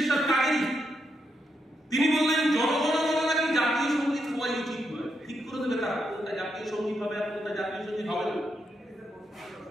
কারি, তিনি বললেন জনগণ নাকি জাতীয় সঙ্গীত হওয়াই উচিত নয়। ঠিক করে দেবে তারা কোনটা জাতীয় সঙ্গীত হবে আর কোনটা জাতীয় সঙ্গীত হবে না।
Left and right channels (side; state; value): both; normal; correlation 0.82